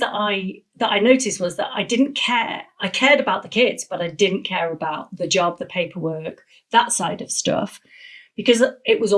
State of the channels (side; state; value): both; identical; correlation 1.00